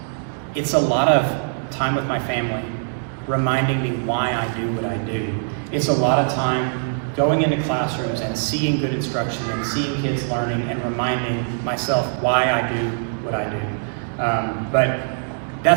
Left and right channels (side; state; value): left; silent; digital silence